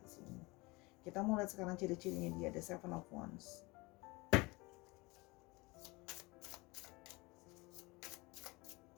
di sini, kita mau lihat sekarang ciri-cirinya dia. Ada Seven of Wands,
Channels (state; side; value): quieter; right; 24.3 dB